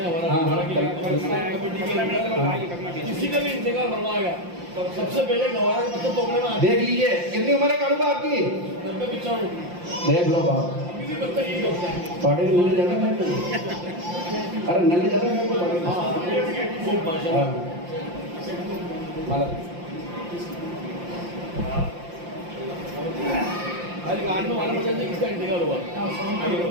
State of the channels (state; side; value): late; left; 5.7 ms